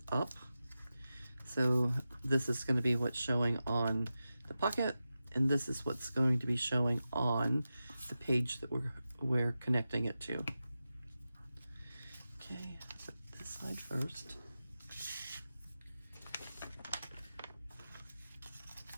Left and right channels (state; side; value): inverted; both; correlation -0.92